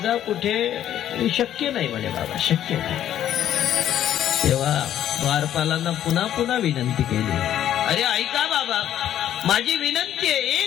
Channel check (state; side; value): quieter; right; 11.2 dB